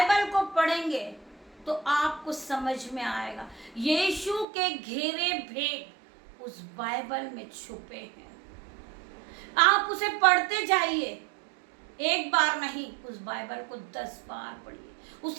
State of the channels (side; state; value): left; drops out; at 4.5 s